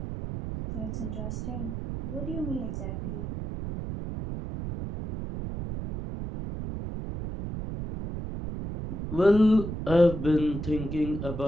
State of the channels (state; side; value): noise; right; rumble, 6 dB below the sound